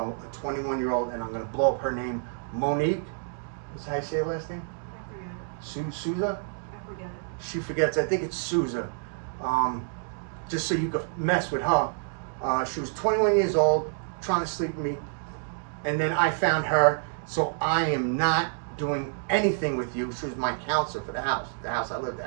a 21-year-old, and I'm going to blow up her name, Monique. Is that how you say her last name? I forget it. Souza? I forget it. She forgets. I think it's Souza. Just so you could mess with her. She was 21 years old, trying to sleep with me. And then I found her, so I am not doing anything with you. She was my counselor for the house I lived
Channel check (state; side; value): silent; left; digital silence